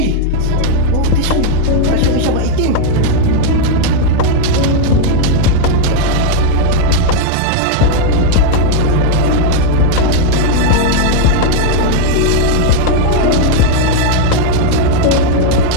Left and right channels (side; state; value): both; different; correlation 0.00